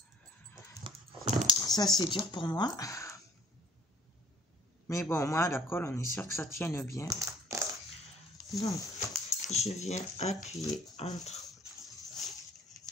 ça c'est dur pour moi. Mais bon, moi, la colle, on est sûr que ça tienne bien. Donc, je viens appuyer entre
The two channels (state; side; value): normal; both; correlation 0.55